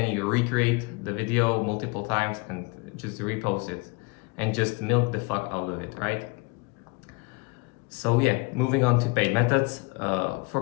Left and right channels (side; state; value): right; quieter; 27.9 dB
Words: you recreate the video multiple times and just repost it and just milk the fuck out of it, right? So yeah, moving on to paid methods.